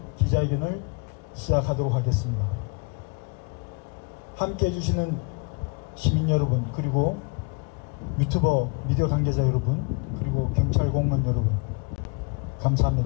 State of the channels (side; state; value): right; quieter; 32.3 dB